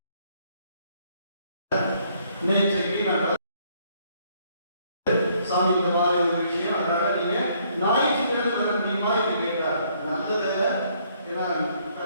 நேற்றைக்கு நான் சாமி இந்த மாதிரி ஒரு விஷயம், அதனால நீங்க ஞாயிற்றுக்கிழமை வர முடியுமா என்று கேட்டார். நல்லதில்லை, ஏன்னா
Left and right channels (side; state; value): both; inverted; correlation -0.67